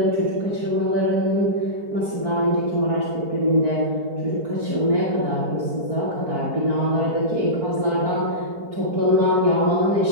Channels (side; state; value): left; late; 4.6 ms